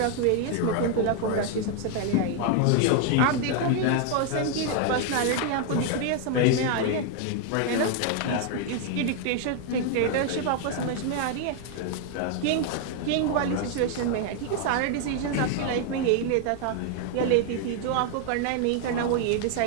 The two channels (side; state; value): both; different; correlation 0.00